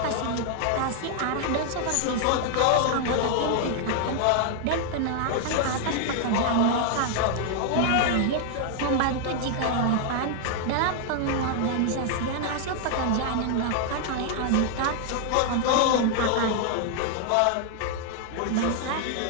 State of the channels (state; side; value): different; both; correlation 0.00